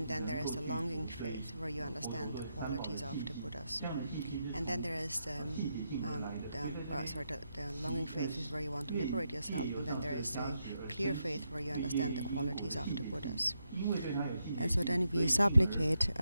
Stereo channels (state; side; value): inverted; both; correlation -0.83